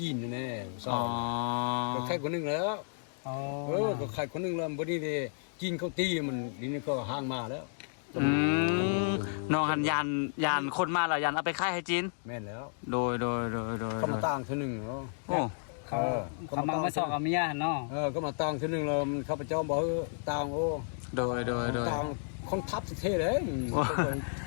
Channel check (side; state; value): right; silent; digital silence